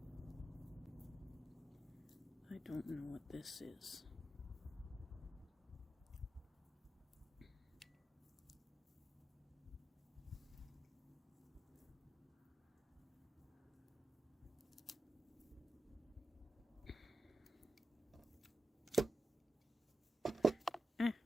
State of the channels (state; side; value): normal; both; correlation 0.91